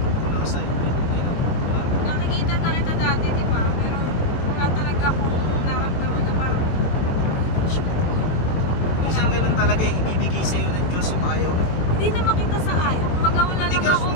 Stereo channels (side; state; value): right; late; 22 ms